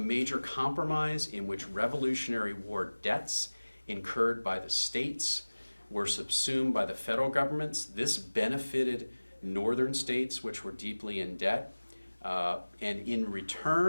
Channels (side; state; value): both; inverted; correlation -1.00